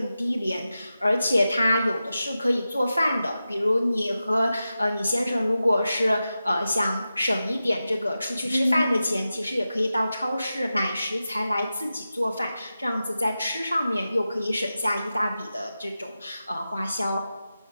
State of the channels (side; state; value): both; inverted; correlation -0.92